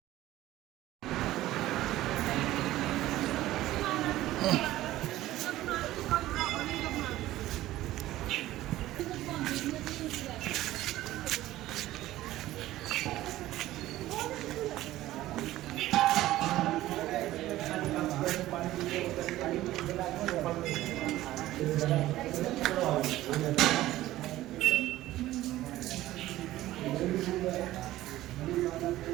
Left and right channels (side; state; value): left; quieter; 15.4 dB